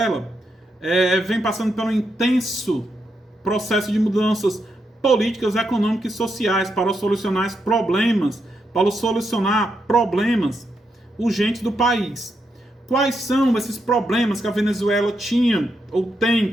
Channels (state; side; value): normal; both; correlation 0.82